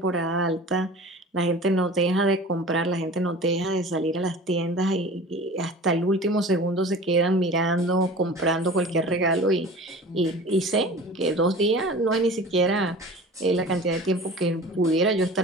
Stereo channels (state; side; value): normal; both; correlation 0.39